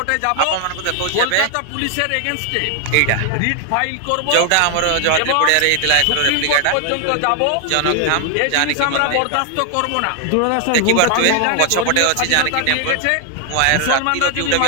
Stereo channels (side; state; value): both; different; correlation 0.00